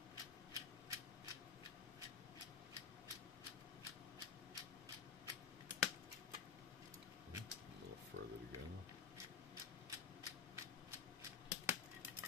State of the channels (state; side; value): quieter; right; 6.5 dB